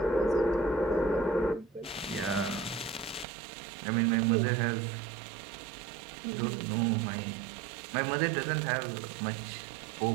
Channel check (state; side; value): drops out; left; at 3.2 s